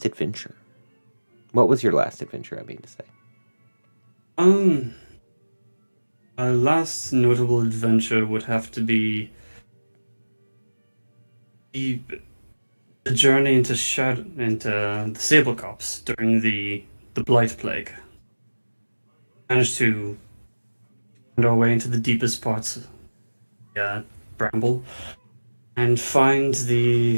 adventure? What was your last adventure, I mean to say? My last notable adventure would have to be the journey into the Sable Copse during the Blight Plague. Managed to find our way into the deepest parts of the Bramble and find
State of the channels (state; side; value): inverted; both; correlation -1.00